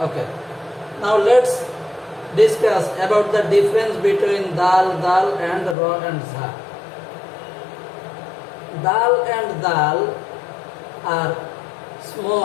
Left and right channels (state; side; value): drops out; right; at 5.8 s